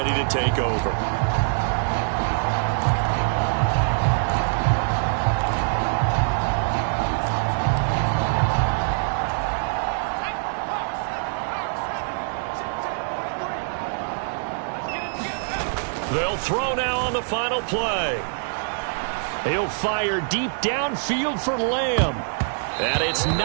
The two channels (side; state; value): left; silent; digital silence